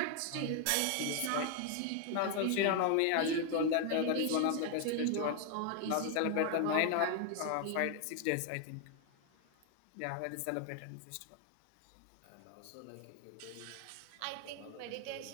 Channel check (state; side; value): different; both; correlation 0.00